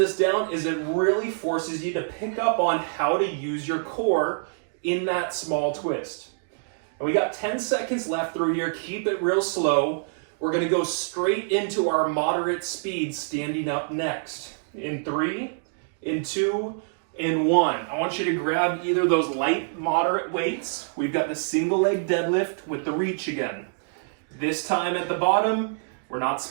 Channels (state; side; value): silent; left; digital silence